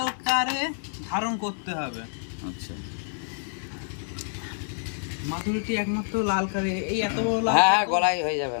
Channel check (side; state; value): right; silent; digital silence